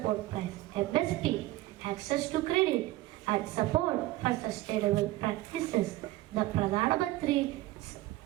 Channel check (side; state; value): left; quieter; 17.1 dB